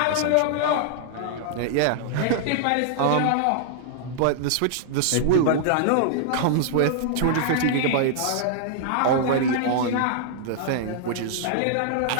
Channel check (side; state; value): both; different; correlation -0.01